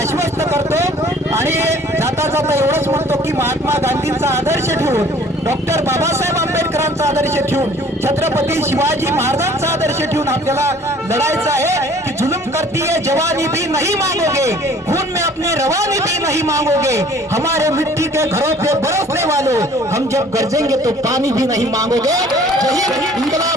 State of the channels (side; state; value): both; normal; correlation 0.53